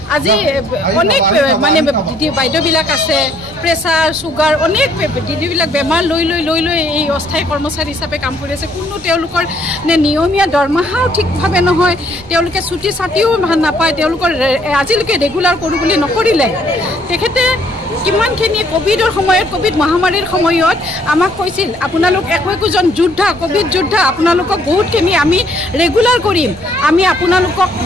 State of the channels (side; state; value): both; normal; correlation 0.65